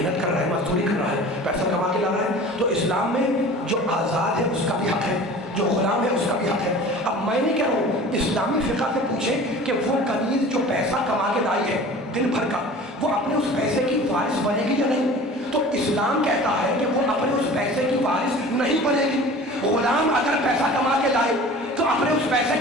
کر رہا ہے، مزدوری کر رہا ہے، پیسہ کما کے لا رہا ہے، تو اسلام میں جو آزاد ہے اس کا بھی حق ہے، جو غلام ہے اس کا بھی حق ہے۔ اب میں نے کہہ رہا ہوں اسلامی فقہ سے پوچھے کہ وہ کنیز جو پیسہ کما کے لائی ہے دن بھر کا، وہ اپنے اس پیسے کی وارث بنے گی یا نہیں؟ تو اسلام کہتا ہے کہ وہ اپنے اس پیسے کی وارث نہیں بنے گی۔ غلام اگر پیسہ کما کے لائے تو اپنے اس پیسے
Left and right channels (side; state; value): both; normal; correlation 0.41